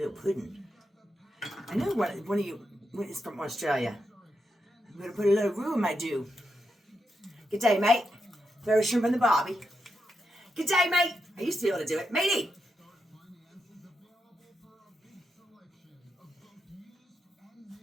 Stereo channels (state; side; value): normal; both; correlation 0.85